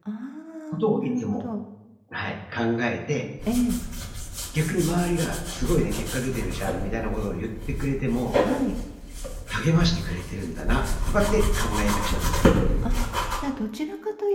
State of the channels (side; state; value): both; identical; correlation 1.00